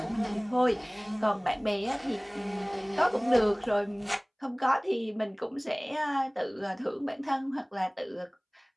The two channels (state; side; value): identical; both; correlation 1.00